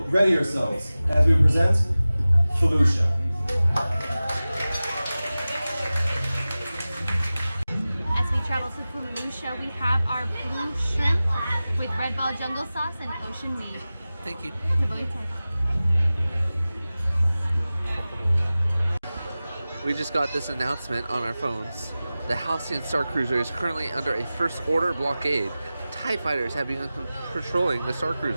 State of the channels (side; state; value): both; inverted; correlation -0.96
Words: ready yourselves as we present Felucia. As we travel to Felucia, we have our blue shrimp with red ball jungle sauce and ocean weed. Thank you. We just got this announcement on our phones. The Halcyon Starcruiser is currently under a first order blockade. TIE fighters have begun patrolling the